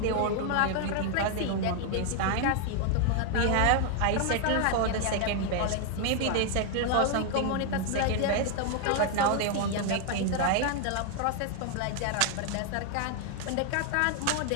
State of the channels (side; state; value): both; different; correlation 0.00